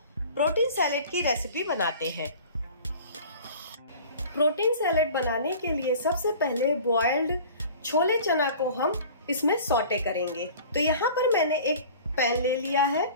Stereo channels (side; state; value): both; inverted; correlation -0.43